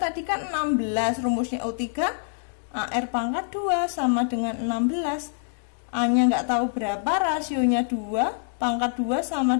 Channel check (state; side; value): silent; right; digital silence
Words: kan 16, rumusnya U3 AR pangkat 2 sama dengan 16. A-nya nggak tahu berapa, rasionya 2, pangkat 2 sama